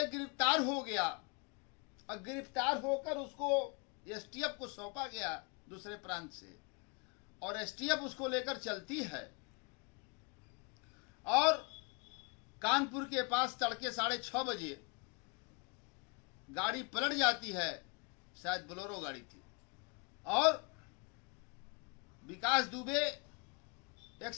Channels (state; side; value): quieter; right; 32.8 dB